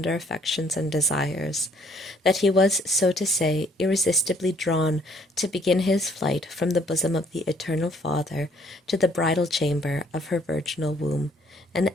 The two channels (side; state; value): both; normal; correlation 0.62